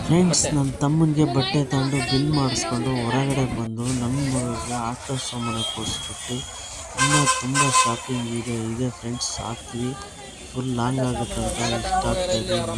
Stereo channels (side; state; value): both; identical; correlation 1.00